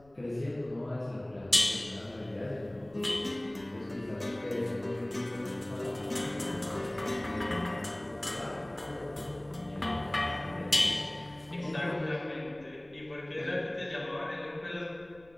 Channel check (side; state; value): left; noise; rumble, 26 dB below the sound